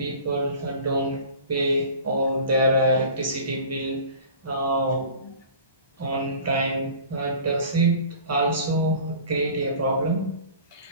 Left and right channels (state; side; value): inverted; both; correlation -0.43